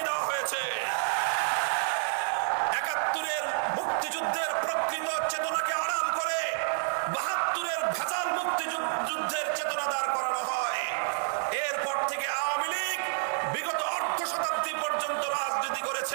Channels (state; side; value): silent; left; 58 dB below the other